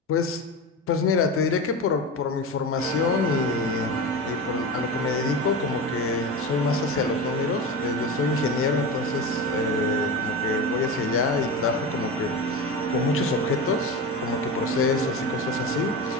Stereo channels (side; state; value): both; normal; correlation 0.25